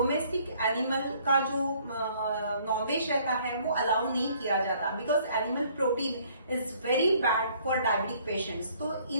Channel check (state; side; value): inverted; both; correlation -0.61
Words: एनिमल का जो नॉनवेज रहता है वो अलाउ नहीं किया जाता, because animal protein is very bad for diabetic patients. तो